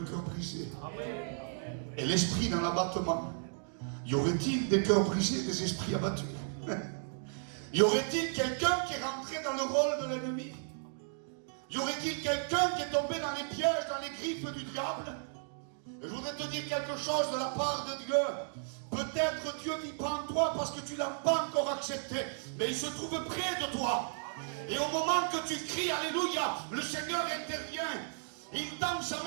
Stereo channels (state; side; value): silent; left; digital silence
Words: cœur brisé. Et l'esprit dans l'abattement. Y aurait-il des cœurs brisés, des esprits abattus? Y aurait-il quelqu'un qui est rentré dans le rôle de l'ennemi? Y aurait-il quelqu'un qui est tombé dans les pièges, dans les griffes du diable? Et je voudrais te dire quelque chose de la part de Dieu. Peut-être Dieu vit pas en toi parce que tu ne l'as pas encore accepté, mais il se trouve près de toi. Et au moment que tu cries Alléluia, le Seigneur intervient. Il tend sa